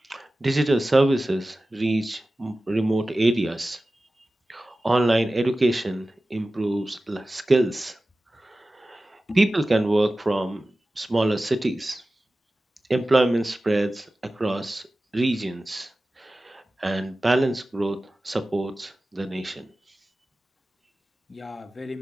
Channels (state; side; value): normal; both; correlation 0.96